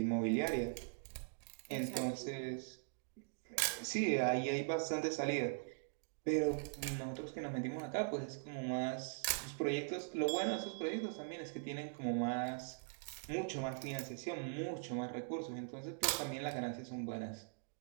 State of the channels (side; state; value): left; silent; digital silence